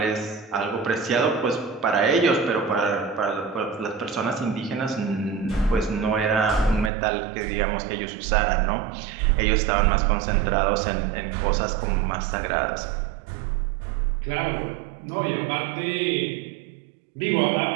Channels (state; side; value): drops out; left; at 6.9 s